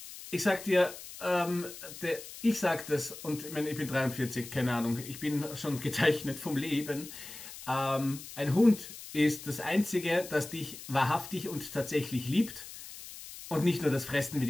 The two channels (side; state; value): left; noise; hiss, 13 dB below the sound